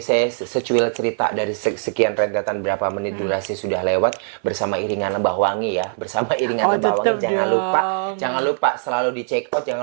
saya secuil cerita dari sekian rentetan berapa menit durasi sudah lewat bersama iringan Lebah Wangi ya. Bersama iringan Lebah Wangi, jangan lupa selalu di check out,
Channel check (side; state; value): left; silent; digital silence